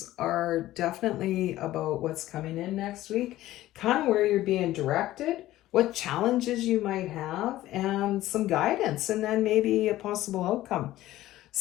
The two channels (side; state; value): right; quieter; 15.3 dB